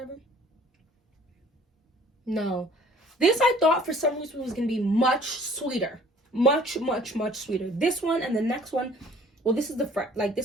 No. This I thought for some reason was going to be much sweeter. Much sweeter. This one and the next one, well, this is the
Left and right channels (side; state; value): both; normal; correlation 0.53